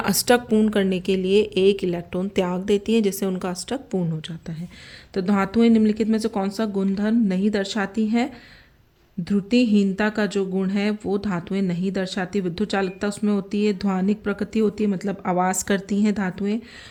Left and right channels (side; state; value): both; identical; correlation 1.00